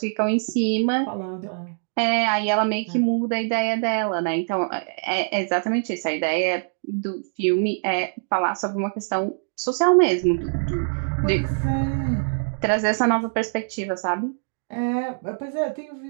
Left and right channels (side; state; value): left; silent; digital silence